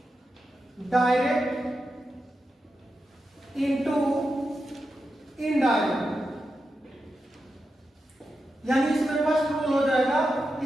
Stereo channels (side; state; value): both; normal; correlation 0.89